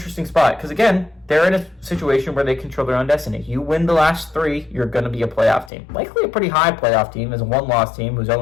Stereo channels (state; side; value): drops out; right; at 5.7 s